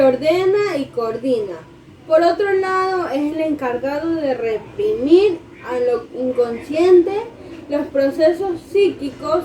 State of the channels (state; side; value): identical; both; correlation 1.00